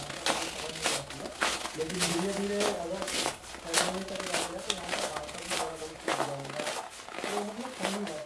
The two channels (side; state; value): both; identical; correlation 1.00